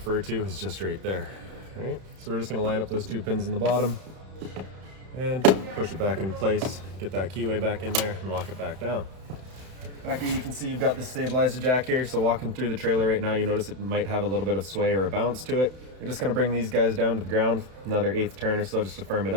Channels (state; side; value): late; left; 31 ms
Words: to is just right there. All right, so we're just going to line up those two pins in the bottom and push it back in place, get that keyway back in there and lock it back down. Back here you can see you've got this stabilizer jack here, so walking through the trailer right now you notice it might have a little bit of sway or a bounce to it. You're just going to bring these guys down to the ground, another 1/8 turn or so just to firm it